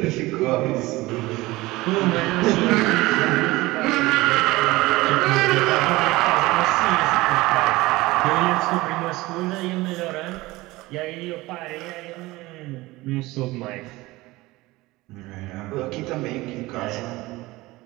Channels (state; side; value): quieter; left; 20.0 dB